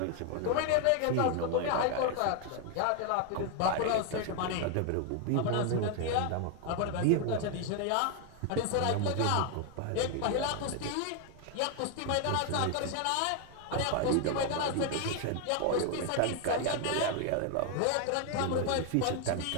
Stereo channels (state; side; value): different; both; correlation 0.00